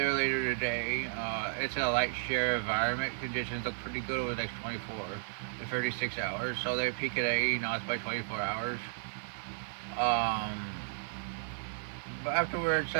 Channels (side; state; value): left; silent; digital silence